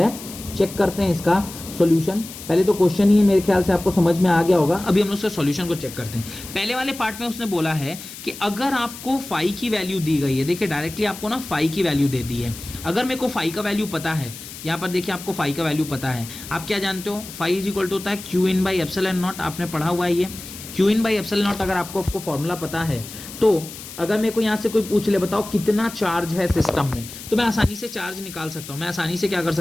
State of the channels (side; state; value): left; noise; hiss, 13 dB below the sound